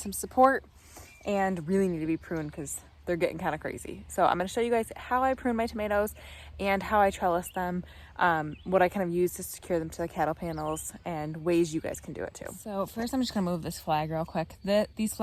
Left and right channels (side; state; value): both; identical; correlation 1.00